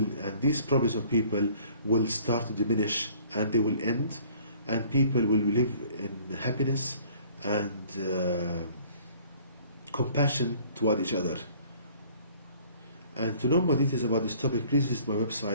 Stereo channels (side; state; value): both; inverted; correlation -0.54